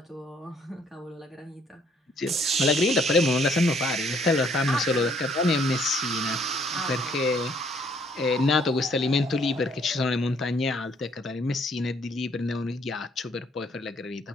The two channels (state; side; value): normal; both; correlation 0.65